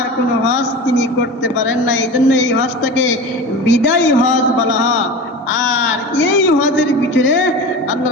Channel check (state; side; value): normal; both; correlation 0.31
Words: কোনো হজ তিনি করতে পারেন না, এই জন্য এই হজটাকে বিদায়ী হজ বলা হয়। আর এই হজের ভিতরে আল্লাহ